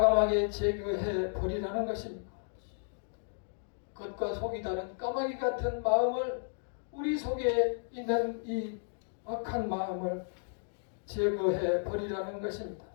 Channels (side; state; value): right; silent; digital silence